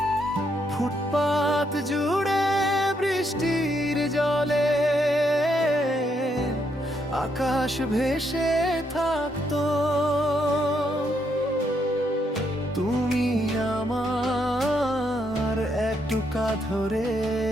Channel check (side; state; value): both; normal; correlation 0.76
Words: ফুটপাত জুড়ে বৃষ্টির জলে আকাশ ভেসে থাকতো, তুমি আমার একটুকা ধরে